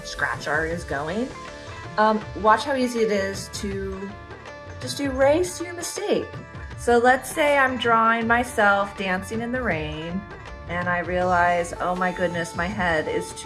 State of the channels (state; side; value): identical; both; correlation 1.00